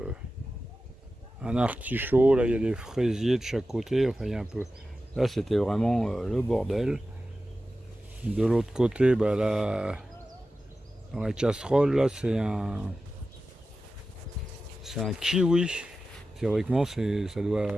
un artichaut. Là, il y a des fraisiers de chaque côté. Enfin, il y a un peu. Là, c'était vraiment le bordel. De l'autre côté, bah, là, Dans la casserole, là, c'est un kiwi. Théoriquement, ça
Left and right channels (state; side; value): normal; both; correlation 0.93